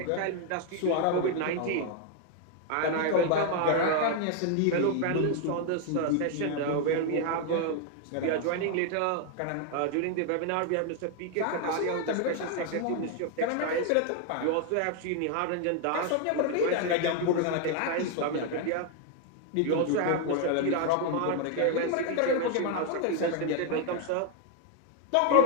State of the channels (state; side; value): different; both; correlation 0.00